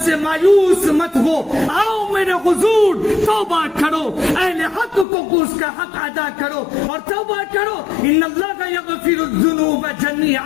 سے مایوس مت ہو, آؤ میرے حضور توبہ کرو, اہل حق کو اس کا حق ادا کرو اور توبہ کرو. ان اللہ یغفر الذنوب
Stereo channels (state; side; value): drops out; right; at 5.1 s